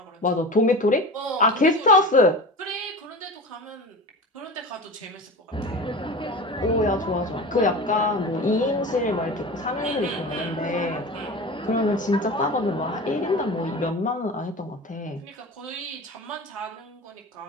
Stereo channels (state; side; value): normal; both; correlation 0.32